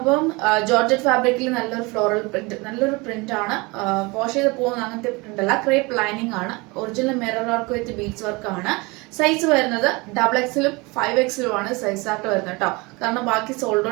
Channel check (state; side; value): quieter; left; 25.6 dB